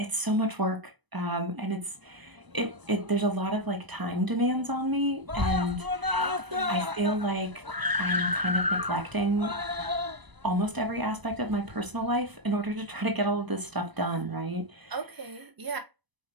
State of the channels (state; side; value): late; left; 1.0 ms